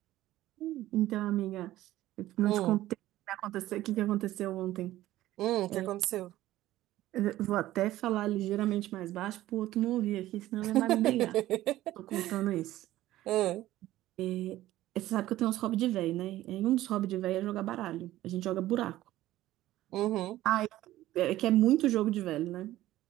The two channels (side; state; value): left; quieter; 15.1 dB